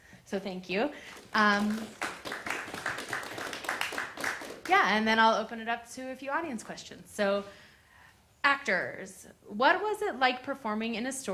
So thank you. Yeah, and then I'll open it up to a few audience questions. So, actors, what was it like performing in a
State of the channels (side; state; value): both; identical; correlation 1.00